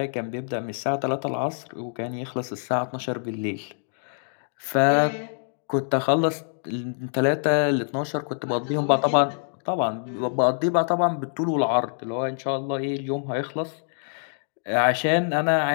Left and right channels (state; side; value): silent; right; digital silence